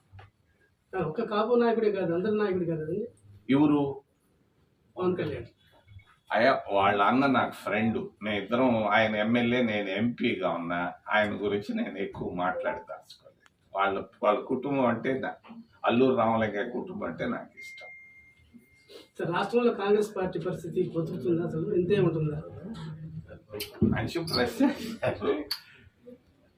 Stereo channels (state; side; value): identical; both; correlation 1.00